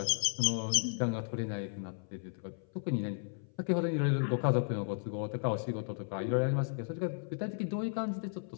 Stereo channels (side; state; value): right; silent; 55 dB below the other